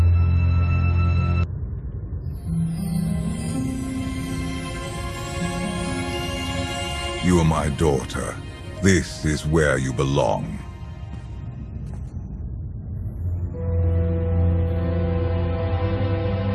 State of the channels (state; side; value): identical; both; correlation 1.00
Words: You are my daughter. This is where you belong.